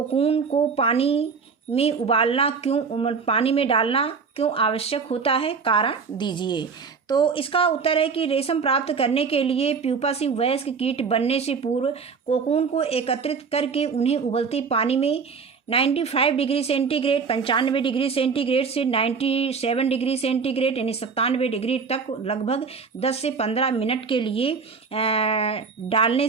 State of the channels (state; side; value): quieter; left; 5.4 dB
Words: को पानी में डालना क्यों आवश्यक होता है? कारण दीजिए। तो इसका उत्तर है कि रेशम प्राप्त करने के लिए प्यूपा से वयस्क कीट बनने से पूर्व कोकून को एकत्रित करके उन्हें उबलते पानी में 95 डिग्री सेंटीग्रेड 95 डिग्री सेंटीग्रेड से 97 डिग्री सेंटीग्रेड यानी 97 डिग्री तक लगभग 10 से 15 मिनट के लिए डालने